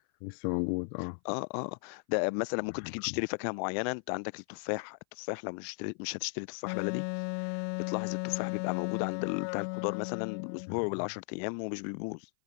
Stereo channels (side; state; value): right; silent; 54 dB below the other